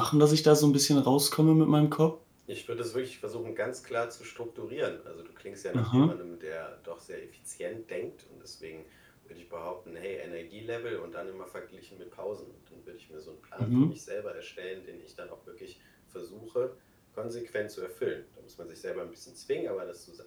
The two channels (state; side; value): identical; both; correlation 1.00